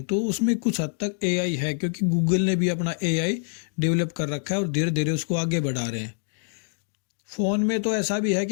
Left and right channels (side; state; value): right; silent; digital silence